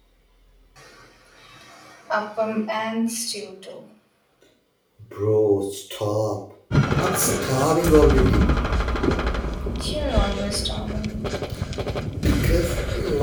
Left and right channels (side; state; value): both; identical; correlation 1.00